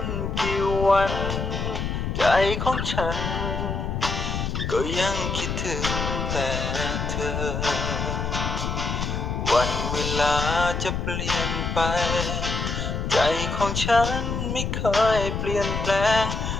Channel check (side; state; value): left; noise; rumble, 2 dB below the sound